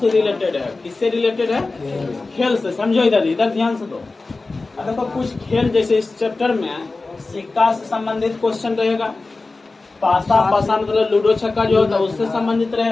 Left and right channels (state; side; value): quieter; right; 3.5 dB